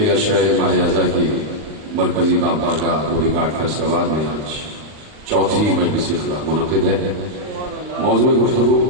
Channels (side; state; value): left; late; 39 ms